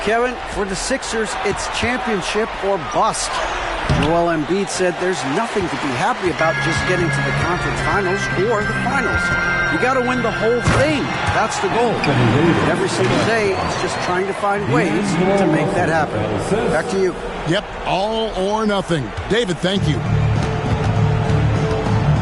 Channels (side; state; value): both; identical; correlation 1.00